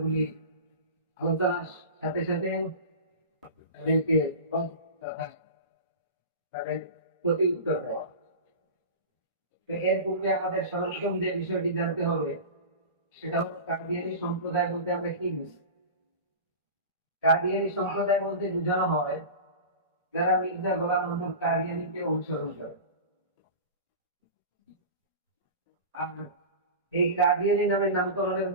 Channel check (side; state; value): both; inverted; correlation -0.31